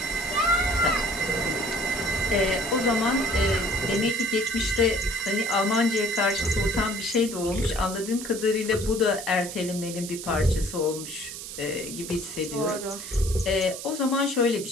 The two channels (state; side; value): noise; right; hiss, 9 dB below the sound